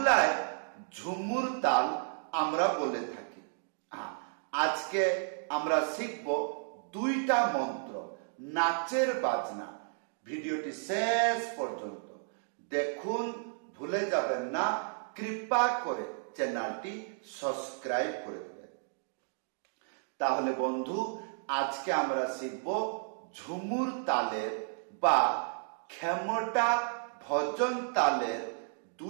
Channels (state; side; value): silent; left; digital silence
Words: ঝুমুর তাল আমরা বলে থাকি। আজকে আমরা শিখব দুইটা মন্ত্র, নাচের বাজনা। ভিডিওটি শেষ পর্যন্ত দেখুন, ভুলে যাবেন না। কৃপা করে চ্যানেলটি সাবস্ক্রাইব করে দেবেন। তাহলে বন্ধু, আজকে আমরা শিখব ঝুমুর তালের বা খেমটা ভজন তালের